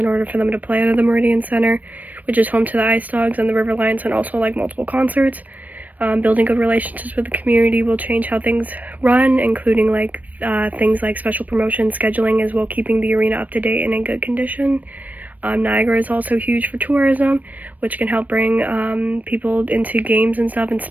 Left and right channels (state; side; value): late; left; 0.078 ms